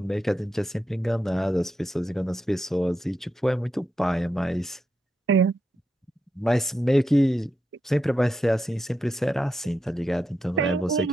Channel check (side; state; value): both; normal; correlation 0.85